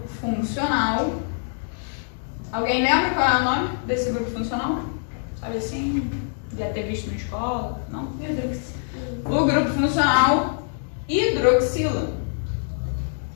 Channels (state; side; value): silent; right; digital silence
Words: funcional. Alguém lembra qual é o nome desse grupo funcional? Sabe assim? Já ter visto na escola? Não? O grupo funcional hidroxila.